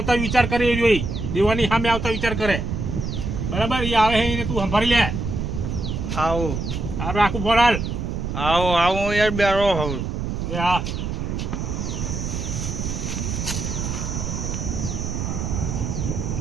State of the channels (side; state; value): right; noise; rumble, 3 dB below the sound